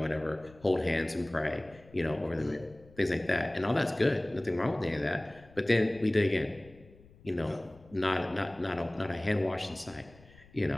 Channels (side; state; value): left; noise; rumble, 24 dB below the sound